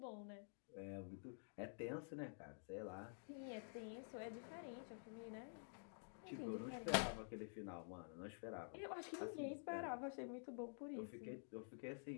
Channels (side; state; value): right; silent; digital silence